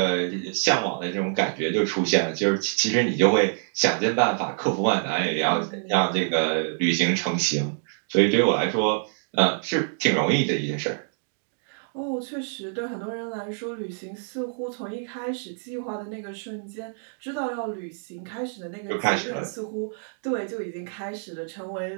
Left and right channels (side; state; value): left; silent; digital silence